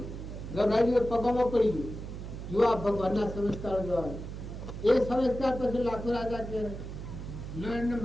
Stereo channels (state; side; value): noise; right; hum, 9 dB below the sound